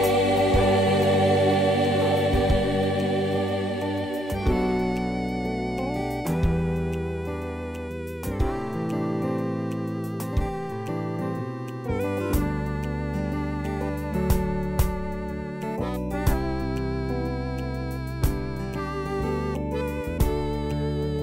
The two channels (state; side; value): normal; both; correlation 0.83